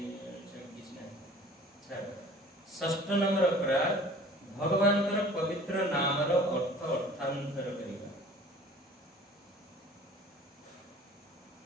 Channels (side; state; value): both; normal; correlation 0.47